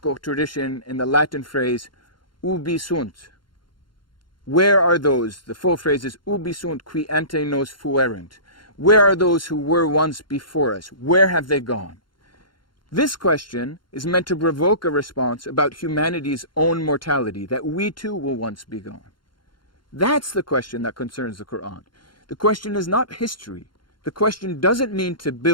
tradition in the Latin phrase, ubi sunt? Where are those? The full phrase is, ubi sunt qui ante nos fuerent? Where are those who were once before us? Where have they gone? This question is meant to provoke a response about humanity's own mortality, that we too will once be gone. That's the question that concerns the Quran. The question is not history. The question doesn't mean to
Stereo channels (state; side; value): late; right; 0.72 ms